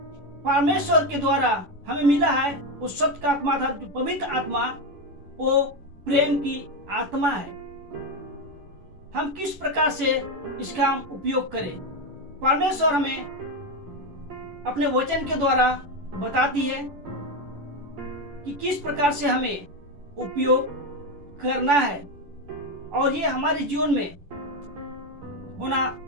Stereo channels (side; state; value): left; late; 10 ms